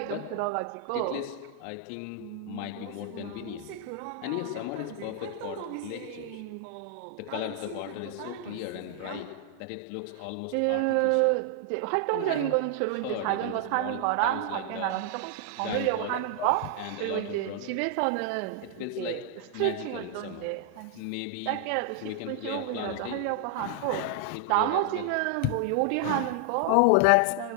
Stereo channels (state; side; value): different; both; correlation 0.00